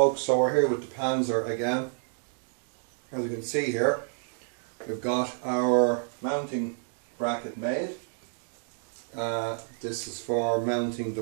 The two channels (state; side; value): silent; left; 58 dB below the other